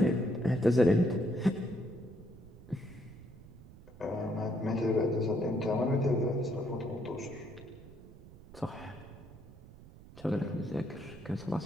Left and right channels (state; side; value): noise; right; rumble, 19 dB below the sound